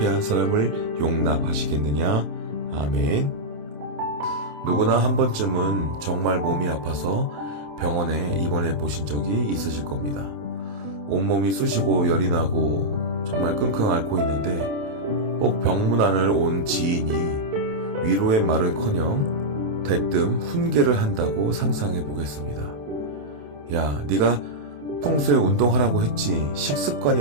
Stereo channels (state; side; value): late; left; 28 ms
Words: 사람을 용납하시겠느냐. 아멘. 누구나 한 번쯤은 정말 몸이 아파서 병원에 입원해 보신 적이 있으실 겁니다. 온몸이 쑤시고 열이 나고 정말 끙끙 앓고 있는데 꼭 병문안을 온 지인이 위로의 말은커녕 대뜸 훈계를 한다고 상상해 보겠습니다. 야, 네가 평소에 운동하라고 했지. 식습관이